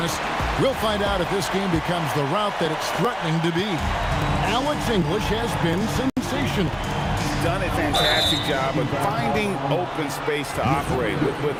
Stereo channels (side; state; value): both; identical; correlation 1.00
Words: us, we'll find out if this game becomes the route that it's threatening to be. Alex English has been sensational. He's done a fantastic job of finding open space to operate